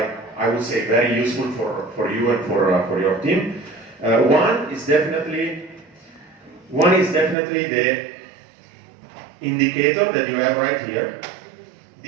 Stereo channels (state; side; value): drops out; left; at 7.4 s